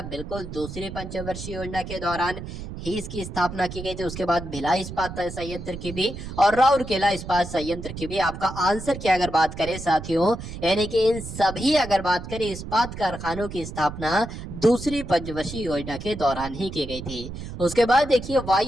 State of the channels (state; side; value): noise; right; rumble, 10 dB below the sound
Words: बिल्कुल दूसरी पंचवर्षीय योजना के दौरान ही इसकी स्थापना की गई थी। उसके बाद भिलाई इस्पात संयंत्र की भी और राउरकेला इस्पात संयंत्र की भी। आपका आंसर की अगर बात करें साथियों, यानी कि इन सभी अगर बात करें इस्पात कारखानों की स्थापना दूसरी पंचवर्षीय योजना के दौरान ही की गई थी। उसके बाद देखिए